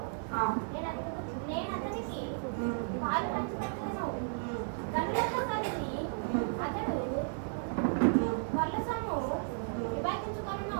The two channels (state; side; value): silent; left; 55 dB below the other